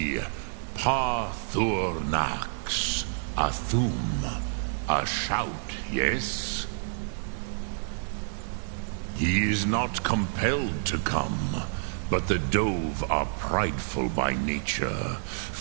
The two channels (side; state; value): left; silent; 59 dB below the other